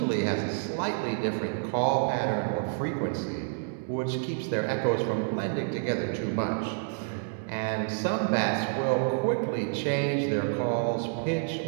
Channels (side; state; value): left; silent; 59 dB below the other